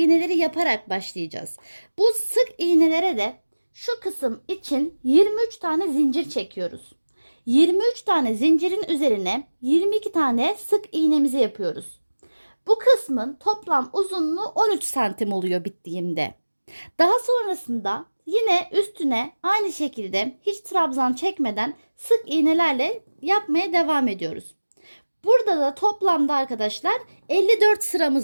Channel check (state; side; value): inverted; both; correlation -1.00